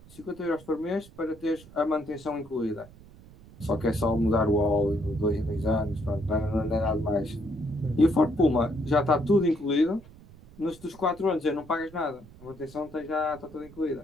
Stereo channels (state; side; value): noise; right; rumble, 21 dB below the sound